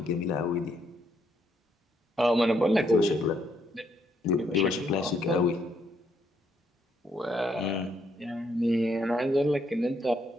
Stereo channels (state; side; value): normal; both; correlation 0.73